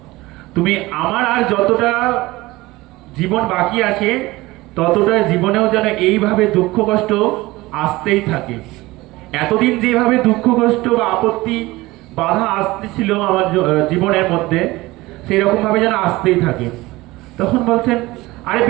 তুমি আমার আর যতটা জীবন বাকি আছে ততটা জীবনেও যেন এইভাবে দুঃখ কষ্ট আসতেই থাকে। এতদিন যেভাবে দুঃখ কষ্ট বা আপত্তি বাধা আসতেছিল আমার জীবনের মধ্যে, সেই রকম ভাবে যেন আসতেই থাকে। তখন বলছেন, আরে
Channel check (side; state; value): left; quieter; 19.9 dB